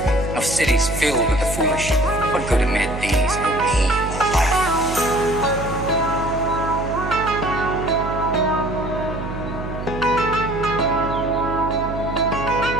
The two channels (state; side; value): noise; right; hum, 7 dB below the sound